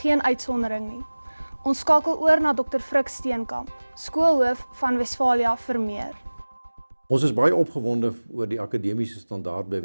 uitsondering nie. Ons skakel oor na Dr. Frik Steenkamp, skoolhoof van Westfalië vir meer. Ons is baie opgewonde oor die akademiese standaard by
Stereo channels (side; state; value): both; inverted; correlation -1.00